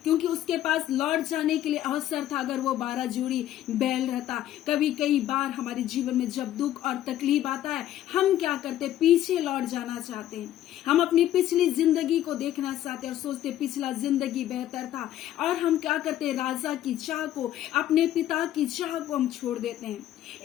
क्योंकि उसके पास लौट जाने के लिए अवसर था, अगर वो 12 जोड़ी बैल रहता। कई बार हमारे जीवन में जब दुख और तकलीफ आता है, हम क्या करते, पीछे लौट जाना चाहते हैं। हम अपनी पिछली जिंदगी को देखना चाहते और सोचते पिछला जिंदगी बेहतर था, और हम क्या करते, राजा की चाह को, अपने पिता की चाह को हम छोड़ देते हैं।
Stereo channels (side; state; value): right; quieter; 12.6 dB